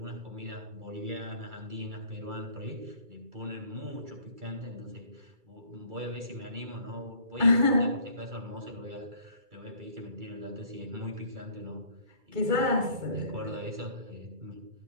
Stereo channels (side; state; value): left; late; 2.3 ms